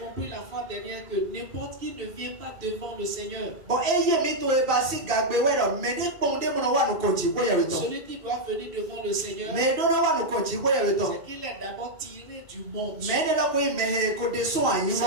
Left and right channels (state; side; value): late; left; 2.7 ms